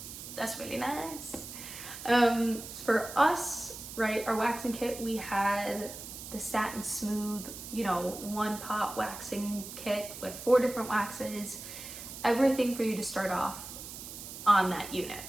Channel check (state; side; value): noise; right; hiss, 11 dB below the sound